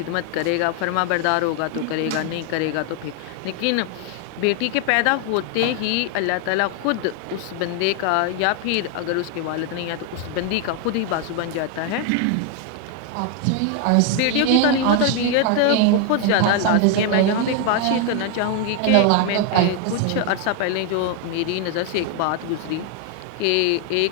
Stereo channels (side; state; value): both; different; correlation 0.01